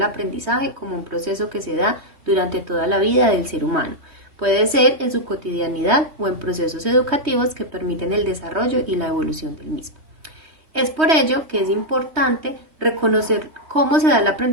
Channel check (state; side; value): late; left; 3.2 ms